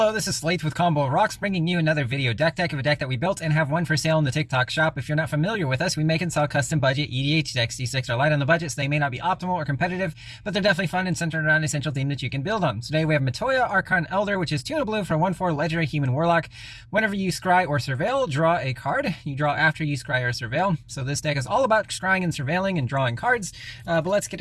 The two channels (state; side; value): identical; both; correlation 1.00